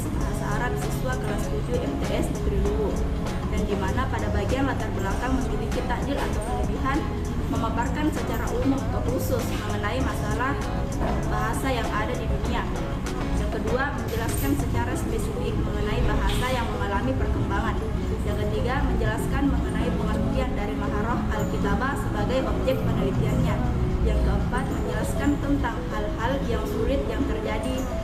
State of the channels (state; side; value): identical; both; correlation 1.00